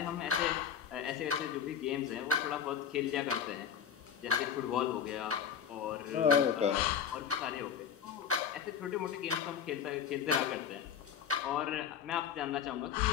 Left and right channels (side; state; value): right; quieter; 7.8 dB